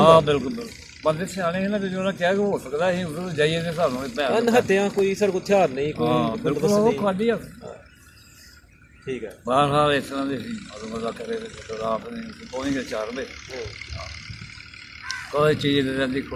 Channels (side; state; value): both; identical; correlation 1.00